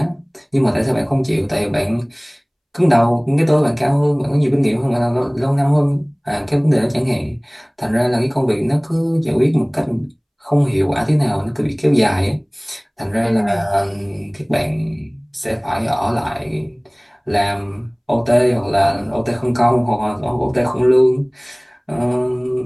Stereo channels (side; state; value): both; identical; correlation 1.00